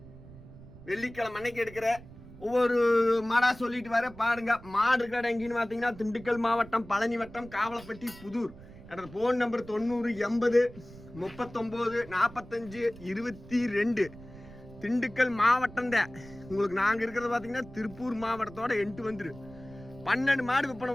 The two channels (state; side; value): noise; right; rumble, 18 dB below the sound